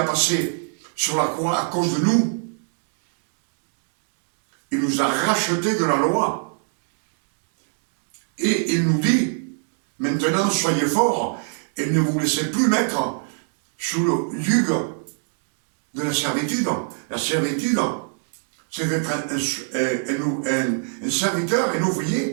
passées sur la croix à cause de nous. Il nous a rachetés de la loi. Et il nous dit, maintenant soyez forts et ne vous laissez plus mettre sous le yugo de la servitude. La servitude, c'est d'être un serviteur, un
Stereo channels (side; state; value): left; silent; 63 dB below the other